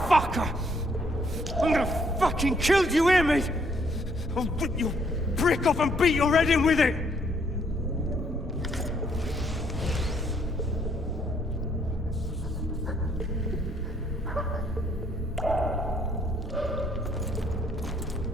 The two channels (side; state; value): both; normal; correlation 0.67